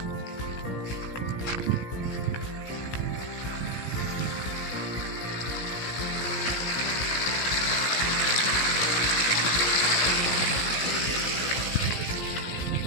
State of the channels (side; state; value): right; late; 17 ms